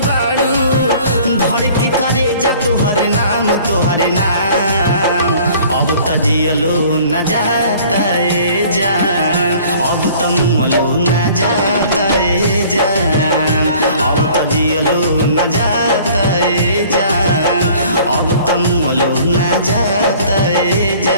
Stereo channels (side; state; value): both; inverted; correlation -0.51